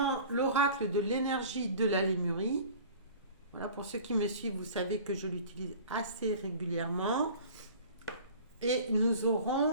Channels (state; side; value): inverted; both; correlation -0.43